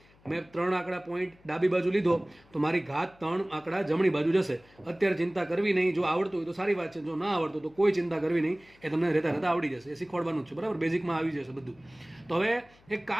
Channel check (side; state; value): left; noise; hum, 29 dB below the sound